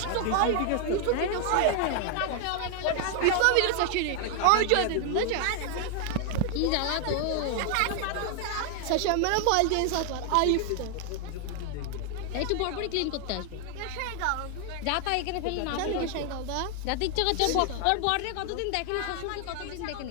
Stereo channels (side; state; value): both; different; correlation 0.00